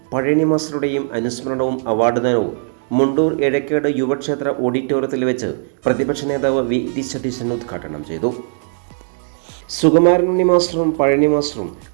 പഴനി മാസ്റ്ററുടെയും അനുസ്മരണവും അവാർഡ് ദാനവും മുണ്ടൂർ എഴക്കേട് യുവക്ഷേത്ര ഓഡിറ്റോറിയത്തിൽ വെച്ച് പ്രതിപക്ഷ നേതാവ് വി സതീശൻ ഉദ്ഘാടനം ചെയ്തു. സുകുമാരൻ ഉണ്ണി മാസ്റ്ററും പഴനി മാസ്റ്ററും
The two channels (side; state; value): left; silent; digital silence